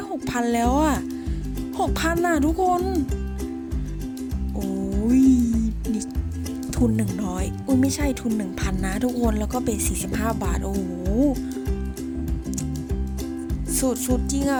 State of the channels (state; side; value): identical; both; correlation 1.00